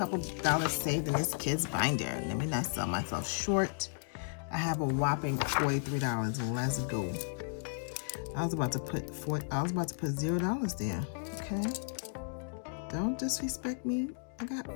dollars saved in this kids binder. Let me not sell myself short. I have a whopping $43. Let's go. I was about to put $0 there. Okay. Don't disrespect me. I got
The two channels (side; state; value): right; silent; digital silence